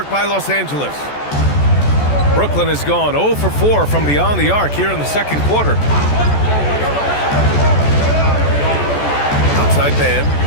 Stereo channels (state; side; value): late; right; 14 ms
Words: by Los Angeles. Brooklyn has gone 0 for 4 from beyond the arc here in the 2nd quarter. Outside man.